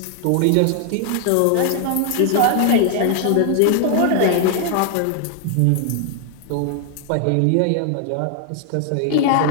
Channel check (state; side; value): different; both; correlation 0.00